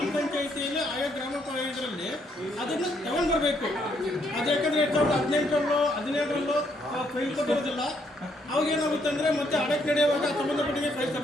ಪಂಚಾಯಿತಿಯಲ್ಲಿ ಆಯಾ ಗ್ರಾಮ ಇದರಲ್ಲಿ ಅದನ್ನು ತಗೊಂಡು ಬರಬೇಕು. ಅದು ಯಾಕಂದರೆ 2018ರಲ್ಲೋ 17ರಲ್ಲೋ ಫೈಲ್ ಕೊಟ್ಟಿರೋದಿಲ್ಲ. ಅವಾಗ ಏನಾಗುತ್ತೆ ಅಂದರೆ ಮತ್ತೆ ಆಡಳಿತ ನಡೆಯುವಾಗ ಸಂಬಂಧಪಟ್ಟಂಗೆ ಫೈಲ್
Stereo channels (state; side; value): normal; both; correlation 0.72